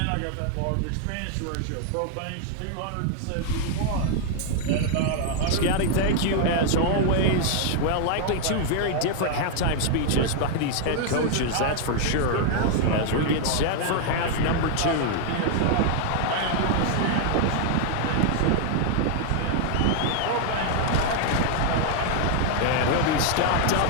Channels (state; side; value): different; both; correlation 0.00